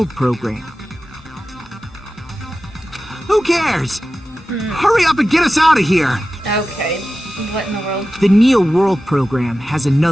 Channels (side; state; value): both; normal; correlation 0.94